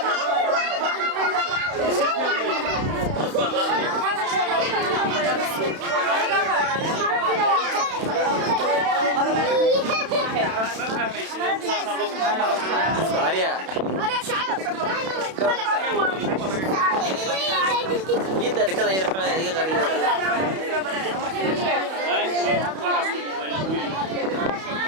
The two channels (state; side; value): late; left; 31 ms